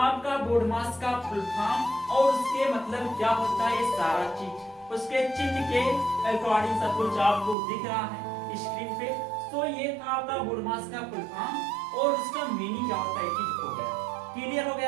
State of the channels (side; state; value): left; drops out; at 7.6 s